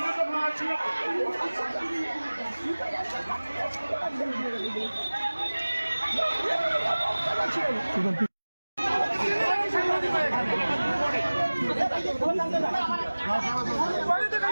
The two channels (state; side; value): inverted; both; correlation -1.00